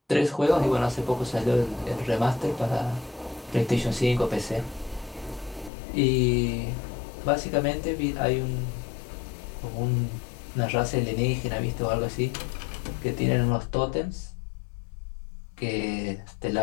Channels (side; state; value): right; drops out; at 5.7 s